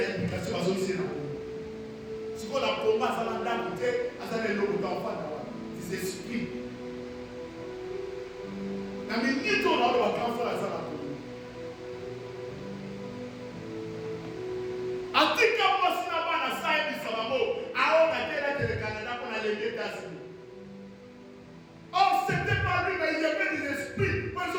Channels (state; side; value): identical; both; correlation 1.00